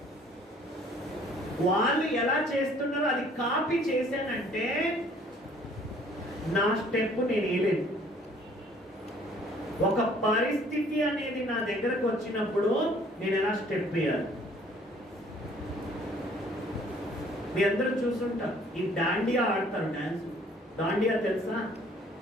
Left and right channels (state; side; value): normal; both; correlation 0.57